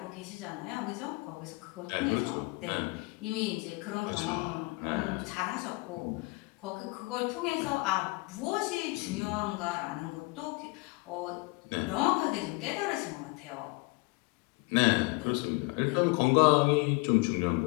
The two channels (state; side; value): quieter; right; 26.3 dB